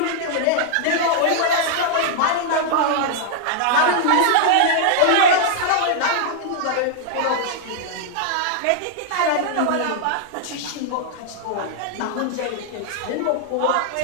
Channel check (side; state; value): both; different; correlation -0.01